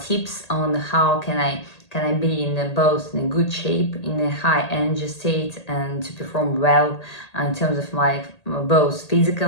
on how can I be in both in a good shape, in a high energy state, and to perform well in terms of my both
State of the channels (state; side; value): late; right; 1.8 ms